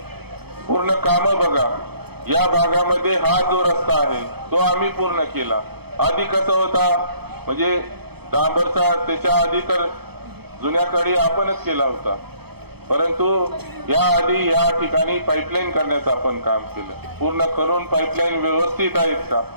पूर्ण काम बघा। या भागामध्ये हा जो रस्ता आहे तो आम्ही पूर्ण केला। आधी कसा होता, म्हणजे डांबरचा त्याच्या आधी तर जुन्याकडे आपणच केला होता, परंतु या आधी या ठिकाणी पाईपलाईन करण्याचं आपण काम केलं, पूर्ण करून पाईपलाईन व्यवस्थित आहेत का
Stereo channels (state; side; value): late; left; 0.97 ms